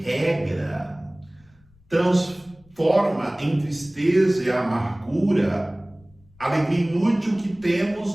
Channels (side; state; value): left; noise; rumble, 30 dB below the sound